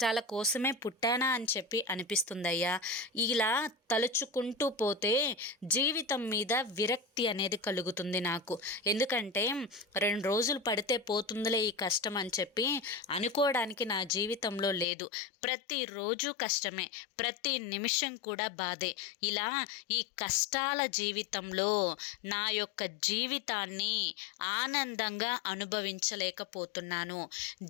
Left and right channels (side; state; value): right; drops out; at 14.9 s